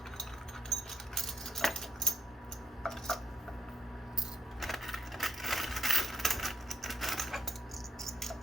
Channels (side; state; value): both; normal; correlation 0.81